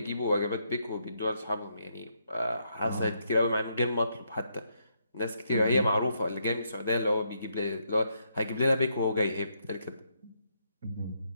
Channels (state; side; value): inverted; both; correlation -0.77